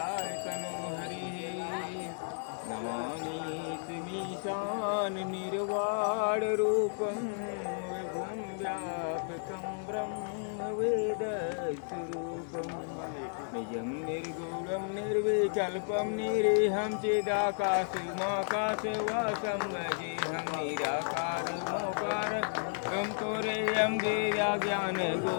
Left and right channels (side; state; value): right; silent; digital silence